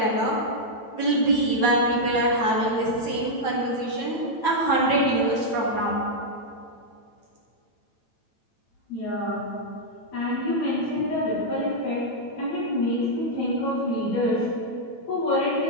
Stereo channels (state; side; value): late; right; 9.0 ms